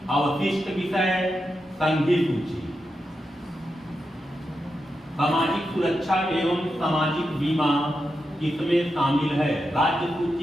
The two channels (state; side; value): normal; both; correlation 0.87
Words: अवशिष्ट विषय, संघीय सूची। सामाजिक सुरक्षा एवं सामाजिक बीमा किसमें शामिल है। राज्य